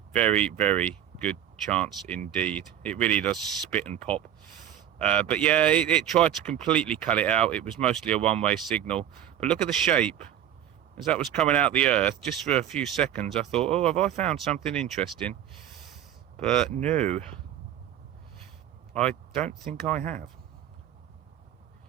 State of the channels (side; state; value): left; quieter; 10.7 dB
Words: Very, very good chance indeed. It really does spit and pop. But yeah, it tried to completely cut it out. It was mostly a one-way signal. But look at the shape. As that was coming out the earth, just for a few seconds, I thought, oh, have I found something interesting? But no, I don't think I have.